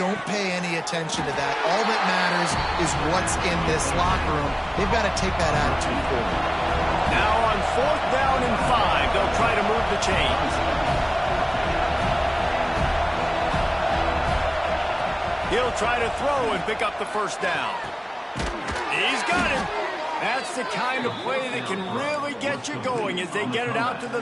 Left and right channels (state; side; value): identical; both; correlation 1.00